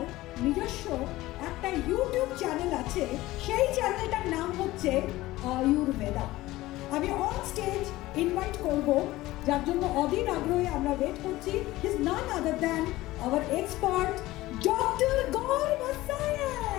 নিজস্ব একটা YouTube channel আছে, সেই চ্যানেলটার নাম হচ্ছে আয়ুর্বেদা। আমি অন স্টেজ ইনভাইট করব, যার জন্য অধীর আগ্রহে আমরা ওয়েট করছি। Is none other than our expert doctor Gour Masaya.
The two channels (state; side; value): quieter; right; 17.6 dB